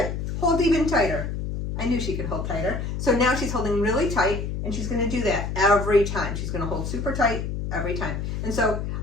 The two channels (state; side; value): noise; left; hum, 3 dB below the sound